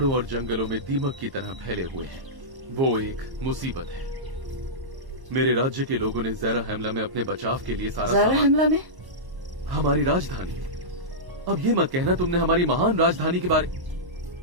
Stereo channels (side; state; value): left; late; 1.1 ms